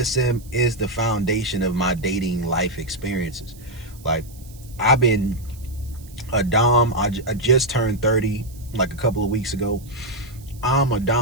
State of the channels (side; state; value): right; noise; hiss, 23 dB below the sound